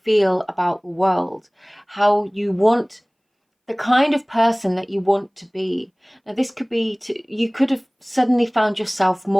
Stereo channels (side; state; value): both; identical; correlation 1.00